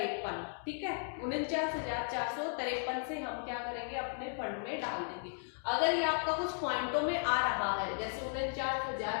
ठीक है। 49,453 से हम क्या करेंगे, अपने फंड में डाल देंगे। अगर ये आपका कुछ पॉइंटों में आ रहा है, जैसे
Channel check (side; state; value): right; silent; 54 dB below the other